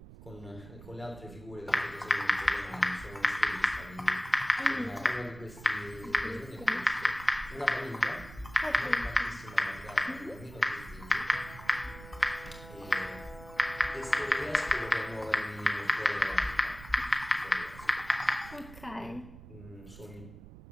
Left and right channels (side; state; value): right; noise; rumble, 17 dB below the sound